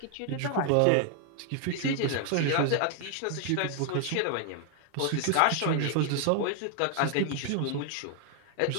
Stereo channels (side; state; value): both; different; correlation 0.00